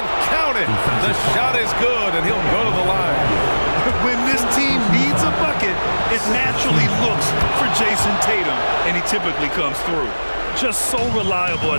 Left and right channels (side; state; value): both; inverted; correlation -1.00